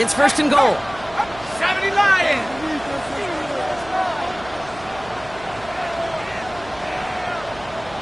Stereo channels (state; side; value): noise; right; hum, 19 dB below the sound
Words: 1st and goal. 70 Lions!